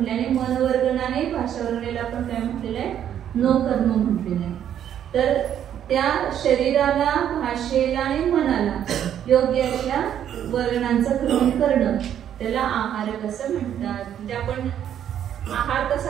आणि मनवर्गणाने भाषावर्गणाला पण काय म्हटलेलं आहे नोकर्म म्हटलेलं आहे. तर त्या शरीराला, भाषेला आणि मनाला योग्य अशा वर्गणांचं ग्रहण करणं त्याला आहारक असं म्हणतात. म्हणजे आपण आहार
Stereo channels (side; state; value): left; quieter; 9.9 dB